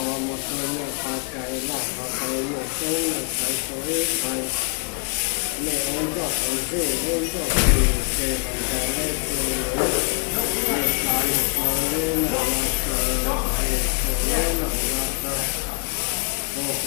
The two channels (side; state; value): right; quieter; 37.9 dB